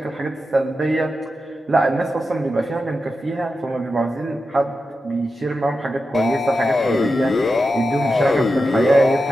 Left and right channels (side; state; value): both; normal; correlation 0.90